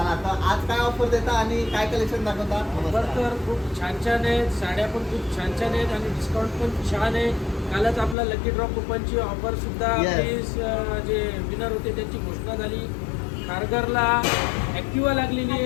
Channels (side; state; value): right; drops out; at 8.2 s